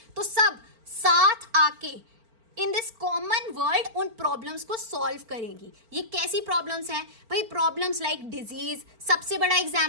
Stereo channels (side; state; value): left; late; 4.4 ms